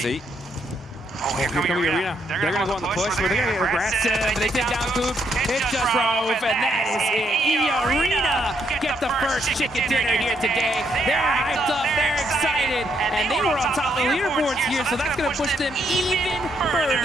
Oh, here comes Irina. They're going to go on the push. They're going to get aggressive. They take down Coops. It's just Rove, and that is it. Irina get the first chicken dinner here today. They're hyped up. They're excited. And they were on top of the leaderboards here, so that's going to push them even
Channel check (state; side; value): normal; both; correlation 0.74